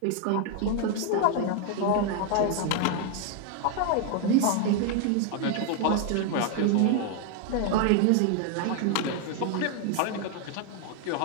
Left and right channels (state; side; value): different; both; correlation 0.00